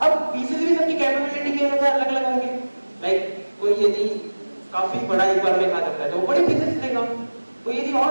अब पीसेस भी सबकी कैपेबिलिटी के अनुसार अलग अलग होंगे। लाइक कोई यदि काफी बड़ा एक बार में खा सकता है तो वो बड़े पीसेस लेगा, कोई यदि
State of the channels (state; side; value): inverted; both; correlation -1.00